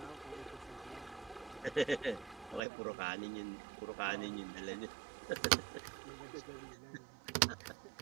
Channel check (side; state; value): left; drops out; at 2.6 s